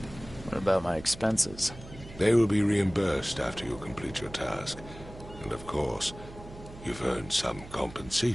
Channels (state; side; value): noise; right; hum, 16 dB below the sound